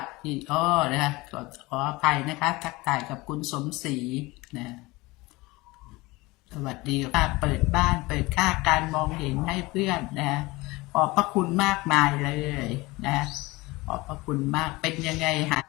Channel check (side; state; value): right; quieter; 22.0 dB